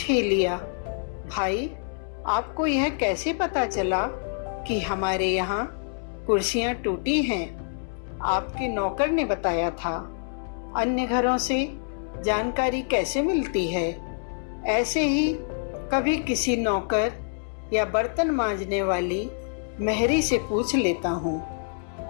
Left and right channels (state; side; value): silent; right; 61 dB below the other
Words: ही लिया, भाई आपको यह कैसे पता चला कि हमारे यहाँ कुर्सियाँ टूटी हैं? आपके नौकर ने बताया था। अन्य घरों से जानकारी कैसे मिलती है? ऐसे ही कभी किसी नौकर या बर्तन मांजने वाली मेहरी से पूछ लेता हूँ,